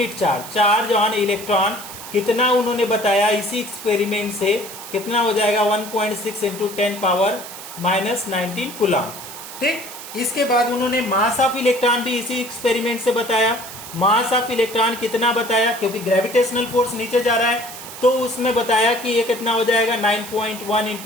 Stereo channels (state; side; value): noise; right; hiss, 12 dB below the sound